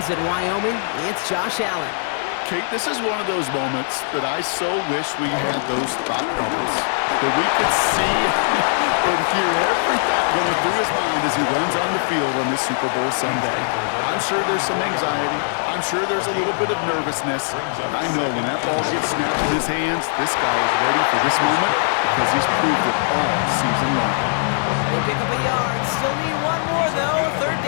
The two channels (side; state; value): right; silent; digital silence